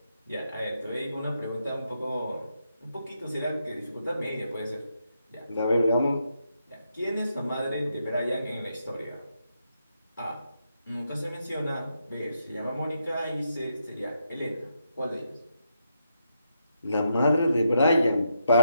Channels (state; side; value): inverted; both; correlation -0.80